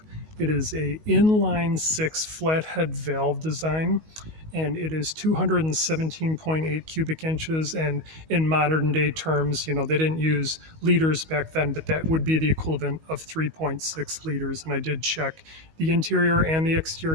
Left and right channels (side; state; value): left; late; 19 ms